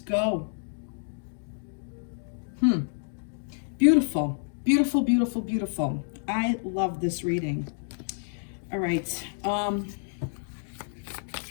go. Beautiful, beautiful, beautiful, beautiful. I love this reading. All right.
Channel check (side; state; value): right; silent; digital silence